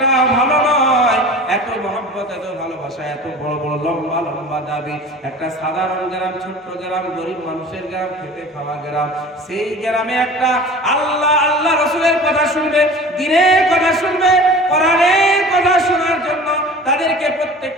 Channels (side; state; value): both; normal; correlation 0.40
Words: ভালো নয়। এত মহব্বত, এত ভালোবাসা, এত বড় বড় লম্বা লম্বা দাবি। একটা সাধারণ গ্রাম, ছোট্ট গ্রাম, গরিব মানুষের গ্রাম, খেতে খাওয়া গ্রাম, সেই গ্রামে একটা আল্লাহ আল্লাহ রসুলের কথা শুনবে, দ্বীনের কথা শুনবে, কোরআনের কথা শোনার জন্য তাদেরকে